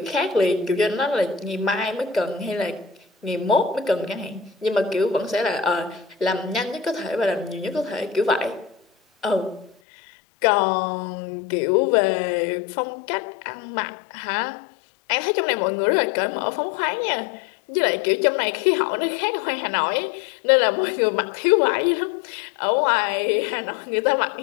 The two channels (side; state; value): right; drops out; at 9.8 s